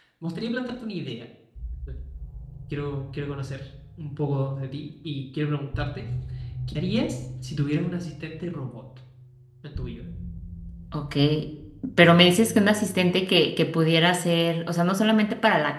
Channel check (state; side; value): identical; both; correlation 1.00